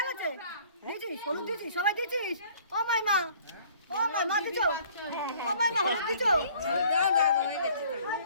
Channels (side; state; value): both; inverted; correlation -0.55